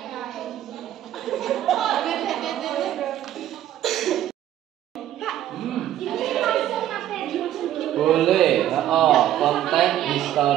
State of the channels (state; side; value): quieter; left; 12.1 dB